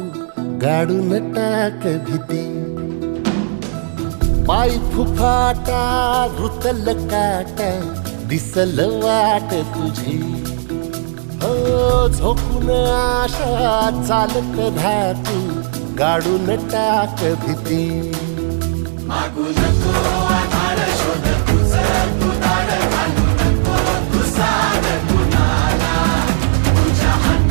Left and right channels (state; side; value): silent; left; digital silence